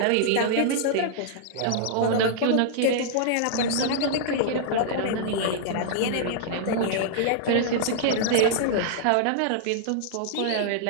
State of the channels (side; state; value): both; different; correlation -0.01